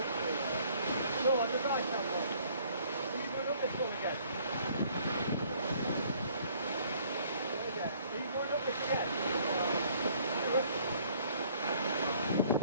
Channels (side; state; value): both; inverted; correlation -0.60